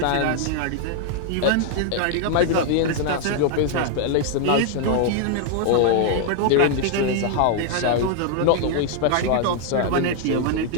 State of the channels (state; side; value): different; both; correlation 0.00